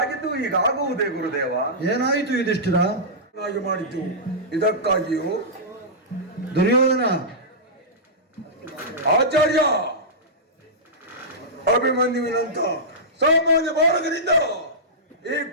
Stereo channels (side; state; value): both; normal; correlation -0.14